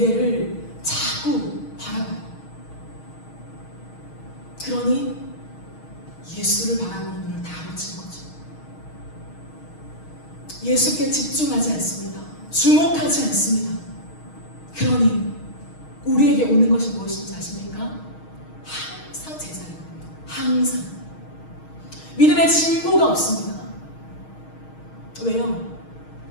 자꾸 바라봐요. 그러니 예수를 바라보는 눈을 다 놓친 거죠. 예수께 집중하지 않습니다. 주목하지 않습니다. 그러니 우리에게 오는 것이 무엇인지 아십니까? 항상 제자리거든요. 항상. 믿음의 진보가 없습니다. 왜요?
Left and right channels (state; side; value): late; right; 6.4 ms